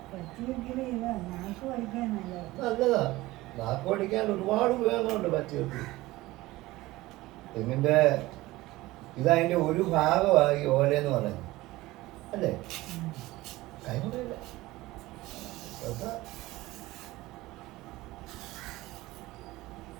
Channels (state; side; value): quieter; left; 18.7 dB